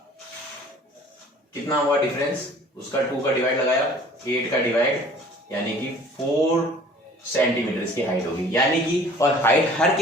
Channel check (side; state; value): both; normal; correlation 0.50